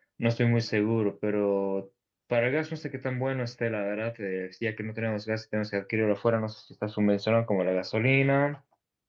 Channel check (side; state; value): both; identical; correlation 1.00